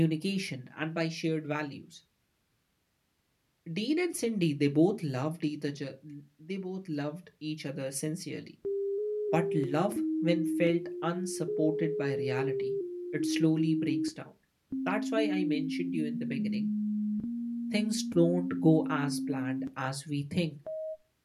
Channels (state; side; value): identical; both; correlation 1.00